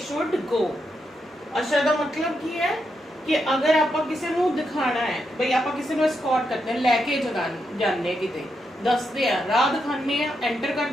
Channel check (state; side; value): normal; both; correlation 0.83